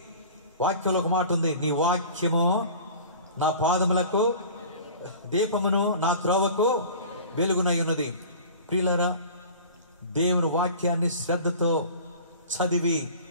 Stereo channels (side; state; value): both; inverted; correlation -0.41